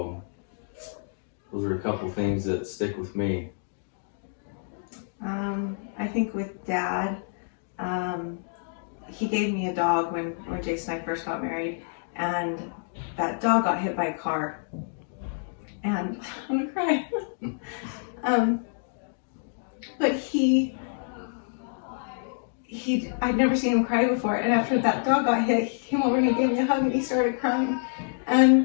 those are a couple things that stick with me. I think with Dad, he gave me a dog when Jason and I first got married, and that dog got hit by a car, and I'm gonna cry. But I'd never seen him cry before, and after that dog got hit, he came over and he gave me a hug and he started crying,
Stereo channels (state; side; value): silent; right; digital silence